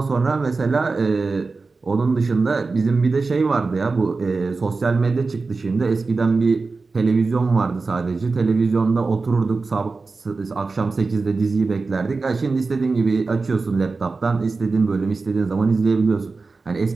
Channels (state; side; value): quieter; left; 4.0 dB